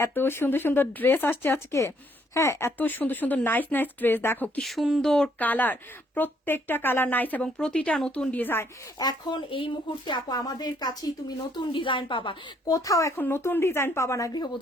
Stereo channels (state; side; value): normal; both; correlation 0.68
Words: এত সুন্দর সুন্দর ড্রেস আসছে আজকে। হ্যাঁ, এত সুন্দর সুন্দর নাইস নাইস ড্রেস, দেখো কি সুন্দর কালার, প্রত্যেকটা কালার নাইস এবং প্রতিটা নতুন ডিজাইন। এখন এই মুহূর্তে আপু আমাদের কাছেই তুমি নতুন ডিজাইন পাবা, কোথাও এখন নতুন ডিজাইন পাবা না